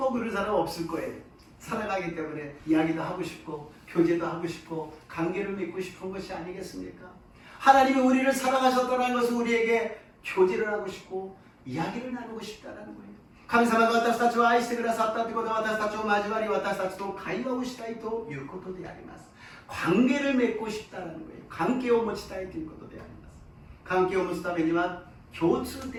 그런 사람 없을 거예요. 사랑하기 때문에 이야기도 하고 싶고 교제도 하고 싶고 관계를 맺고 싶은 것이 아니겠습니까? 하나님이 우리를 사랑하셨다는 것은 우리에게 교제를 하고 싶고 이야기를 나누고 싶다는 거예요. 神様が私たちを愛してくださったということは私たちを交わり私たちと会話をしたいということであります。 관계를 맺고 싶다는 거예요. 관계を持ちたいということであります。 관계を持つためには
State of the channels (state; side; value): identical; both; correlation 1.00